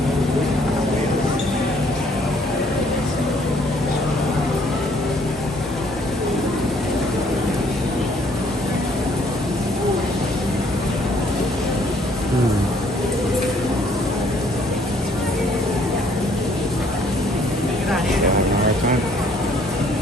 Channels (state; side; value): normal; both; correlation 0.63